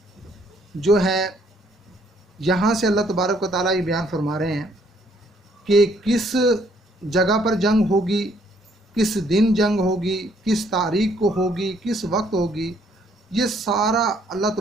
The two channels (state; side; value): normal; both; correlation 0.66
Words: جو ہے یہاں سے اللہ تبارک و تعالیٰ یہ بیان فرما رہے ہیں کہ کس جگہ پر جنگ ہوگی، کس دن جنگ ہوگی، کس تاریخ کو ہوگی، کس وقت ہوگی، یہ سارا اللہ